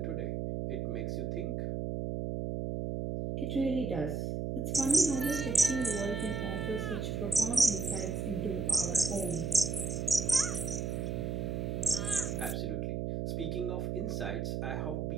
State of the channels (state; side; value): noise; right; hum, 1 dB below the sound